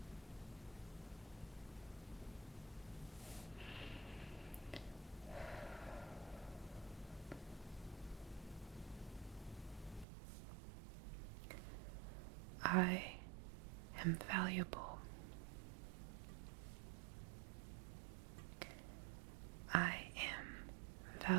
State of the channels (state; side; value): drops out; left; at 10.1 s